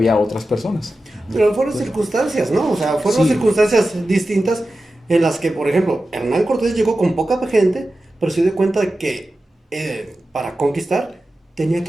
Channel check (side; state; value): both; normal; correlation 0.93